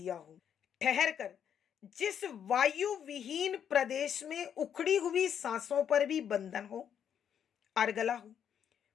हो। ठहर कर जिस वायु विहीन प्रदेश में उखड़ी हुई सांसों पर भी बंधन हो, अर्गला हो,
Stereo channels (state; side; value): quieter; right; 8.6 dB